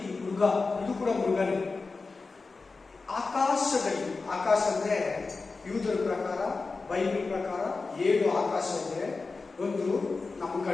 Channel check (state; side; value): quieter; right; 4.0 dB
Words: ಈ ಮೃಗ, ಇದು ಕೂಡ ಮೃಗನೇ. ಆಕಾಶದಲ್ಲಿ, ಆಕಾಶ ಅಂದ್ರೆ ಯೂದರ ಪ್ರಕಾರ, ಬೈಬಲ್ ಪ್ರಕಾರ 7 ಆಕಾಶ ಇದೆ. ಒಂದು ನಮ್ಮ